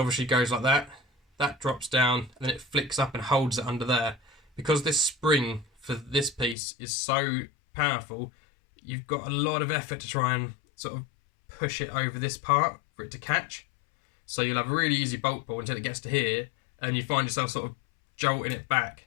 goes like that, that drops down, and then it flicks up and holds it under there. Because this spring for this piece is so powerful, you've got a lot of effort to try and sort of push it over this part for it to catch. So you'll have a really easy bolt pull until it gets to here, and you find yourself sort of jolting it back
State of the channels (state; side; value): drops out; right; at 6.6 s